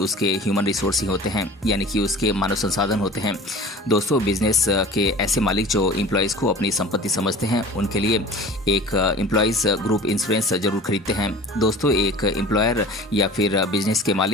ह्यूमन रिसोर्स ही होते हैं, यानी कि उसके मानव संसाधन होते हैं। दोस्तों, बिजनेस के ऐसे मालिक जो एम्प्लॉयज़ को अपनी संपत्ति समझते हैं, उनके लिए एक एम्प्लॉयज़ ग्रुप इंश्योरेंस जरूर खरीदते हैं। दोस्तों, एक एम्प्लॉयर या फिर बिजनेस के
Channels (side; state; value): both; normal; correlation 0.41